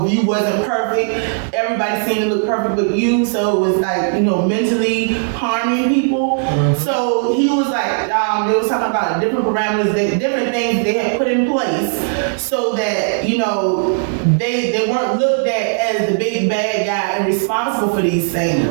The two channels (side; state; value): left; silent; digital silence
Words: if you wasn't perfect, everybody seemed to look perfect but you. So it was like, mentally harming people. Mm-hmm. So he was like, they was talking about different parameters, different things they had put in place so that, they weren't looked at as the big bad guy and responsible for these